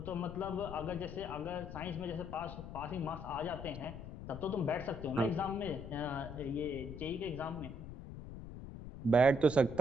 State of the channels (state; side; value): noise; left; rumble, 10 dB below the sound